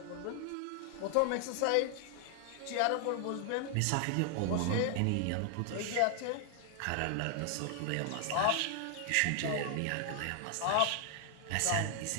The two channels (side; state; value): both; different; correlation 0.00